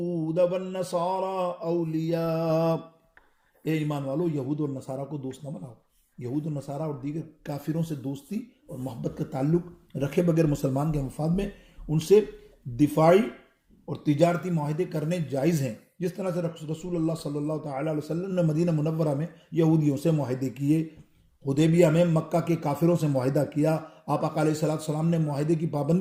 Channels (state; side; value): identical; both; correlation 1.00